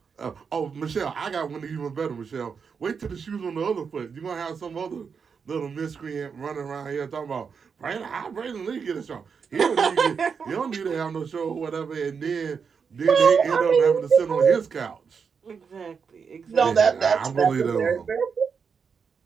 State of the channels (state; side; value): quieter; left; 6.0 dB